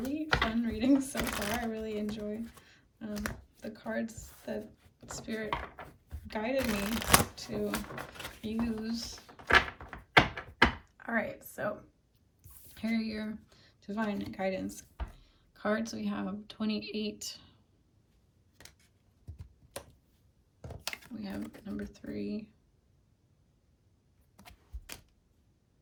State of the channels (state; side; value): identical; both; correlation 1.00